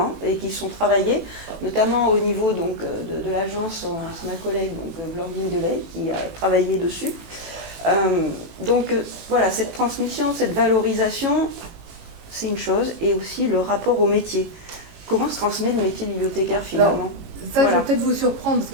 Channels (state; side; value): late; left; 18 ms